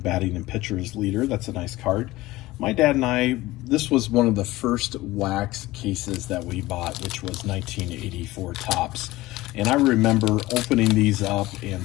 and pitchers leader. That's a nice card. My dad and I, this was one of the first wax cases that we bought, which was 1984 Topps. And I remember opening these up and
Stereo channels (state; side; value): quieter; right; 18.3 dB